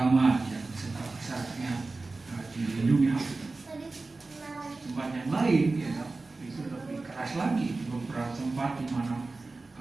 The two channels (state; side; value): quieter; left; 3.5 dB